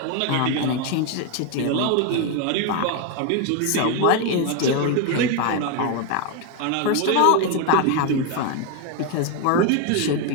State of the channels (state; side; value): different; both; correlation 0.01